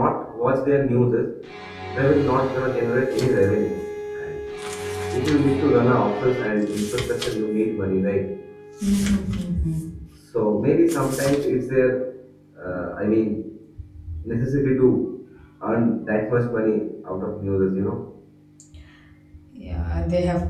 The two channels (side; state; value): both; identical; correlation 1.00